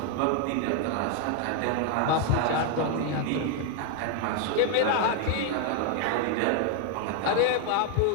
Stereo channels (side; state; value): both; different; correlation 0.00